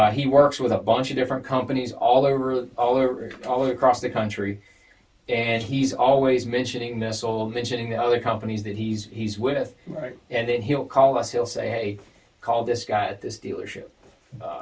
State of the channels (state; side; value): identical; both; correlation 1.00